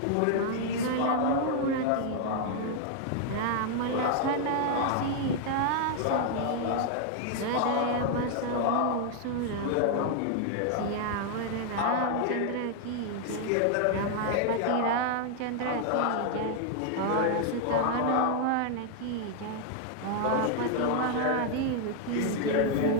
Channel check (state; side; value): different; both; correlation 0.00